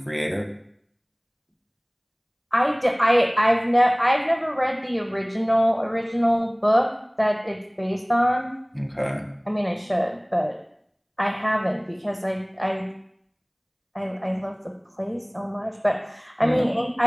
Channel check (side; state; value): both; identical; correlation 1.00